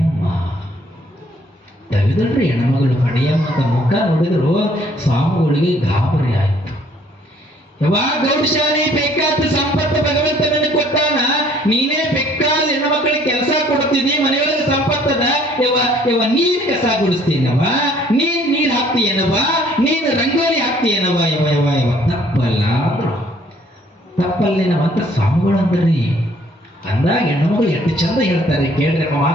ತೆಗೆದಲ್ರಿ ಹೆಣ್ಮಗಳು. ಪಡೆಯಮ್ಮ ಅಂತ ಮುಖ ನೋಡಿದ್ರು ಸ್ವಾಮಿಗಳಿಗೆ ಗಾಬರಿ ಆಯ್ತು. ಯಾವಾಗ ಗೌಡಶಾಲಿ ಬೇಕಾದ ಸಂಪತ್ತು ಭಗವಂತ ನನಗೆ ಕೊಟ್ಟಾನ, ನೀನೇ ಬೇಕಾದ ಹೆಣ್ಣು ಮಕ್ಕಳಿಗೆ ಕೆಲಸ ಕೊಡ್ತೀನಿ, ಮನೆಯೊಳಗೆ ಸಂಪತ್ತದ ಯವ ನೀರ್ ಕಸ ಗುಡಿಸ್ತೀನವ, ನೀನ್ ನೀರ್ ಹಾಕ್ತೀಯನವ, ನೀನ್ ರಂಗೋಲಿ ಹಾಕ್ತೀಯನವ, ಯವ ತಪ್ಪಲ್ಲ ಅಂದ್ರು. ತಪ್ಪಲ್ಲೇನವ ಅಂತ ಸ್ವಾಮಿಗಳು ಅಂದ್ರಿ. ಅಂದಾಗ ಹೆಣ್ಣುಮಗಳು ಎಷ್ಟು ಚಂದ ಹೇಳ್ತಾರೆ ಕೇಳ್ರಿ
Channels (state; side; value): normal; both; correlation 0.60